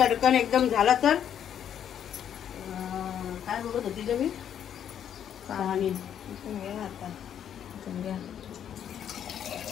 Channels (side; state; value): right; quieter; 9.3 dB